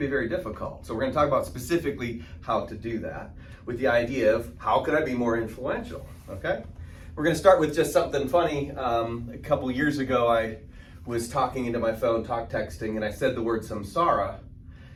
very difficult. So we're going to talk about specifically how to do that with the idea of how could I be more influential, okay? We're going to start with just something funny. A couple years ago, I was talking into my phone, texting, and I said the word samsara,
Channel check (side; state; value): both; identical; correlation 1.00